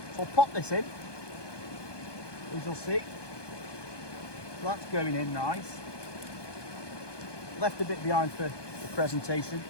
So I'll pop this in, as you'll see. So that's going in nice. Left a bit behind for the presentation,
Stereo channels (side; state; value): right; late; 1.2 ms